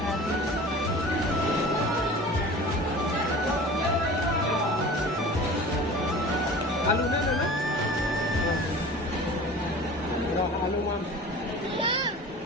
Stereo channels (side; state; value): both; normal; correlation 0.39